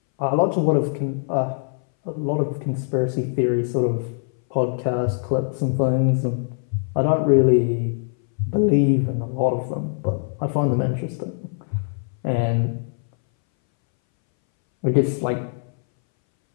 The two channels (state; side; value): silent; right; 61 dB below the other